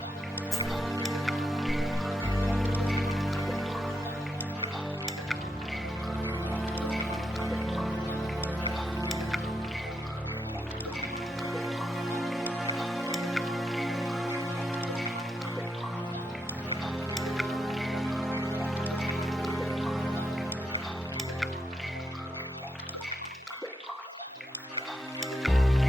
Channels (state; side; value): normal; both; correlation 0.82